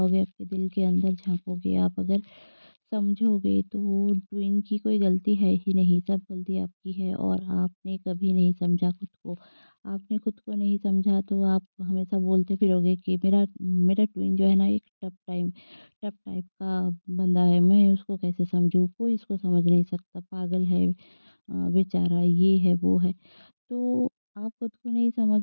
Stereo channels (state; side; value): inverted; both; correlation -1.00